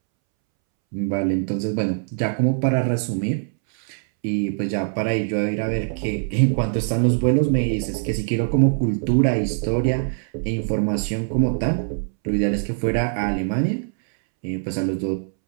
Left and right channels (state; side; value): silent; left; 64 dB below the other